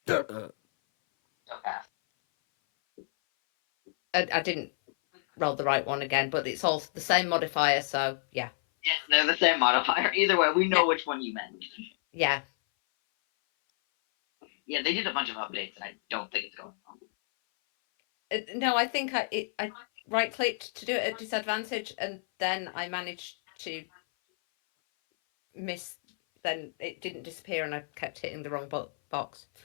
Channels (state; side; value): silent; right; 58 dB below the other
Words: Okay. I didn't roll the right one again, but it's all the same modifier, so yeah. Yes, they're the same modifier. Either way, we know Yeah. which one you meant. Yeah. Yeah, they did a bunch of updates, and I don't think it's going wrong. No, I think I right clicked to do it at disadvantage, and then I managed to miss. Then it didn't disappear, and I kept hitting the wrong box.